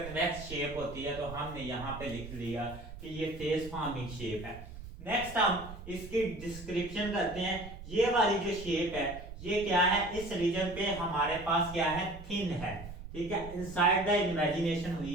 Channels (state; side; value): noise; right; rumble, 13 dB below the sound